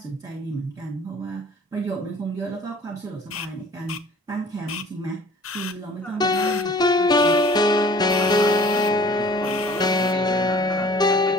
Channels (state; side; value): normal; both; correlation 0.49